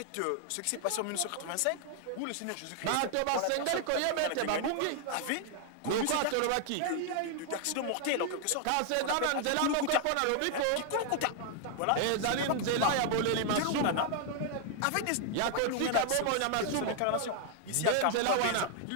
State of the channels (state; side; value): different; both; correlation 0.00